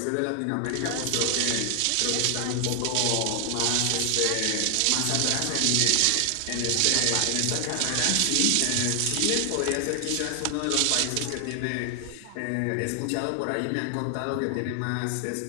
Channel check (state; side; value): different; both; correlation 0.00